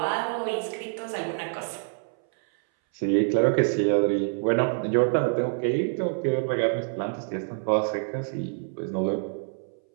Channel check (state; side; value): silent; left; 60 dB below the other